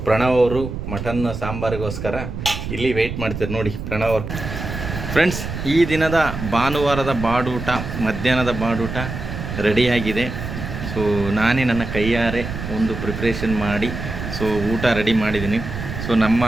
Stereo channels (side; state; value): right; noise; rumble, 7 dB below the sound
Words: ಪ್ರಣವ್ ಅವರು ಮಟನ್ ಸಾಂಬಾರಿಗೋಸ್ಕರ ಇಲ್ಲಿ ವೆಯ್ಟ್ ಮಾಡ್ತಾರೆ. ನೋಡಿ ಪ್ರಣವ್ ಅವರು. ಫ್ರೆಂಡ್ಸ್, ಈ ದಿನದ ಭಾನುವಾರದ ಬಾಡೂಟ, ಮಧ್ಯಾಹ್ನದ ಬಾಡೂಟ ರೆಡಿಯಾಗಿದೆ. ಸೊ ನಾನೇ ನನ್ನ ಕೈಯಾರೆ ಒಂದು ಪ್ರಿಪ್ರೇಷನ್ ಮಾಡಿ ಸೊ ಊಟ ರೆಡಿ ಮಾಡಿದ್ದೀನಿ. ಸೊ ನಮ್ಮ